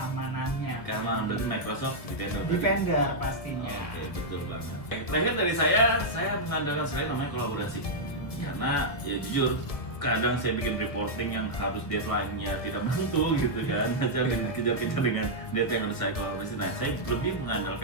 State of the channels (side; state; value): right; late; 1.7 ms